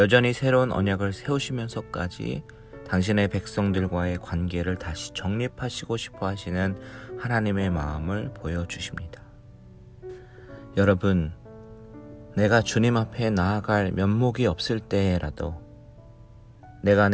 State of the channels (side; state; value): both; identical; correlation 1.00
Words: 새로운 언약을 세우시면서까지 당신의 백성들과의 관계를 다시 정립하시고 싶어 하시는 하나님의 마음을 보여주십니다. 여러분, 내가 주님 앞에 나아갈 면목이 없을 때라도, 내가